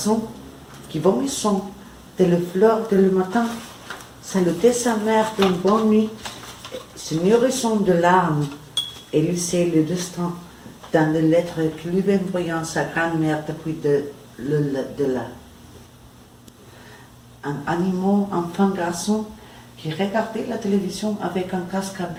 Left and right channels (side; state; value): both; identical; correlation 1.00